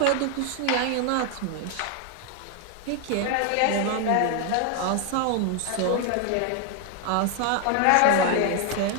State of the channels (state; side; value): different; both; correlation 0.00